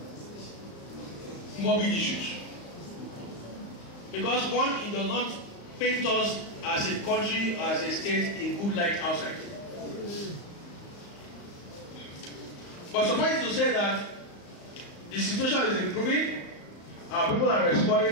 morbid issues. Because one, it does not paint us as a country, as a state in good light outside. But suffice to say that the situation is improving, our people are responding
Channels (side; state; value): right; late; 35 ms